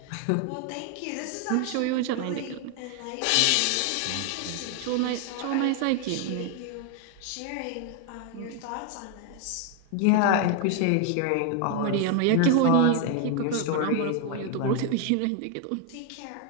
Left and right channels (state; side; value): different; both; correlation 0.01